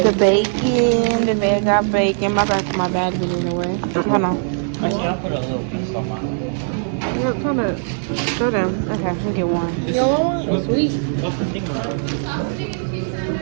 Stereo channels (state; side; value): silent; left; 63 dB below the other